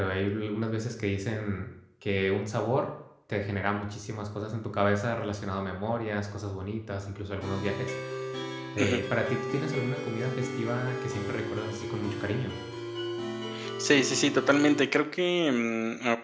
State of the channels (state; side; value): identical; both; correlation 1.00